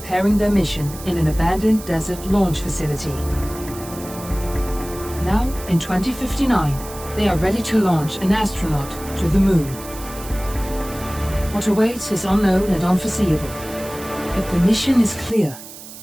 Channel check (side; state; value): right; noise; hiss, 15 dB below the sound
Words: their mission in an abandoned desert launch facility. Now, in 2059, they are ready to launch an astronaut to the Moon. What awaits is unknown and unforeseeable, but the mission is clear.